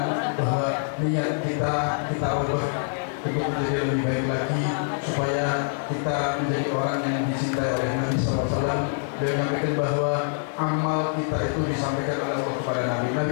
bahwa niat kita ubah untuk menjadi lebih baik lagi, supaya kita menjadi orang yang dicintai oleh Nabi SAW. Beliau menyampaikan bahwa amal kita itu disampaikan oleh Allah kepada Nabi.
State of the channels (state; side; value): silent; right; 61 dB below the other